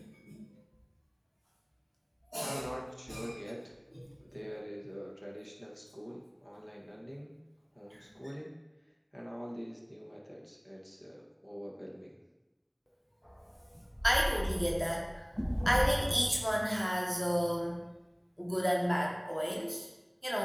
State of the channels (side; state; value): both; identical; correlation 1.00